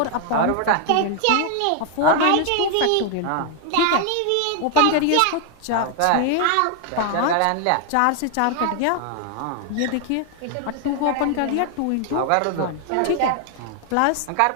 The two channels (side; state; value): both; different; correlation 0.00